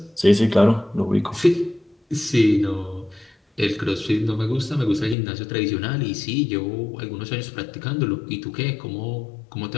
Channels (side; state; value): right; drops out; at 5.2 s